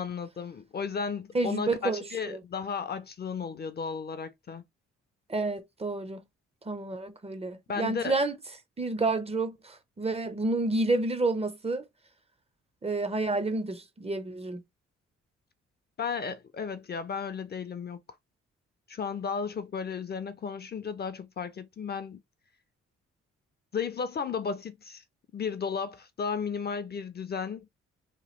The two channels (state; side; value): normal; both; correlation 0.42